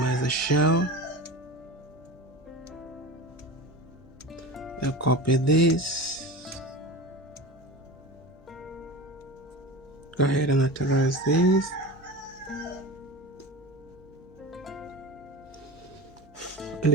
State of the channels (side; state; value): both; normal; correlation 0.30